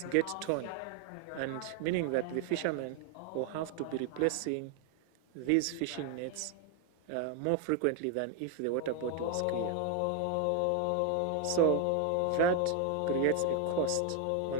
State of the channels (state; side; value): different; both; correlation 0.01